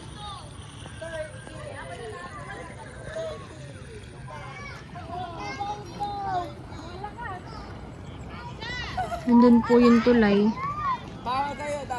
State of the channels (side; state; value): both; identical; correlation 1.00